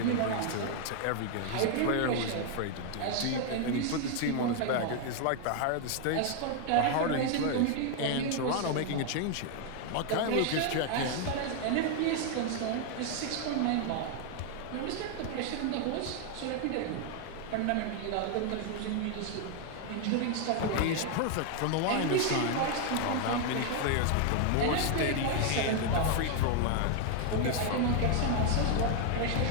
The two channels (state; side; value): different; both; correlation 0.01